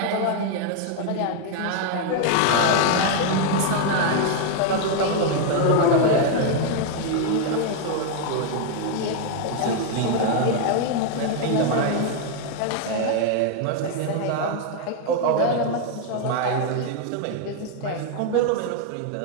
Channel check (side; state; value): both; different; correlation 0.00